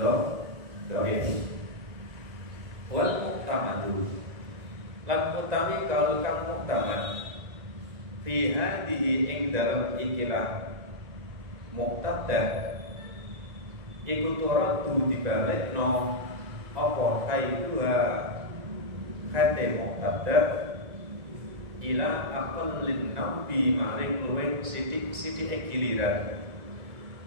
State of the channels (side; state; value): left; late; 1.9 ms